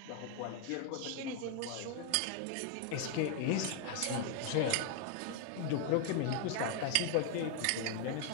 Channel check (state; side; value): different; both; correlation 0.00